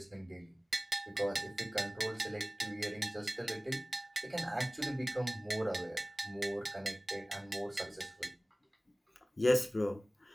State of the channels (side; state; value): both; normal; correlation 0.98